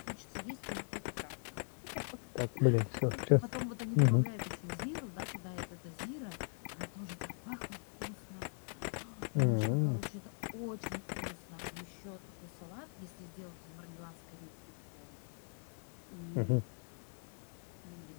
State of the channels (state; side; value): silent; right; 51 dB below the other